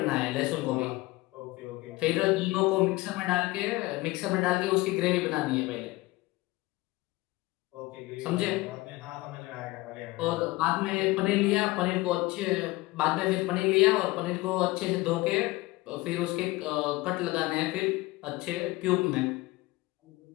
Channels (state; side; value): quieter; right; 20.7 dB